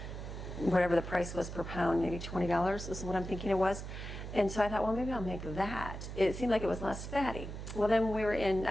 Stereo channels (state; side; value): noise; right; hum, 8 dB below the sound